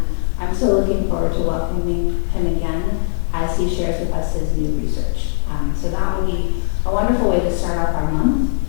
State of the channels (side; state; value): right; silent; digital silence